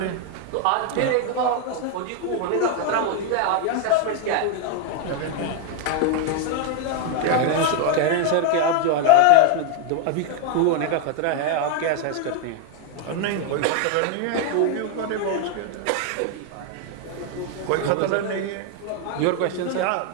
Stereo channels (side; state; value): both; different; correlation 0.00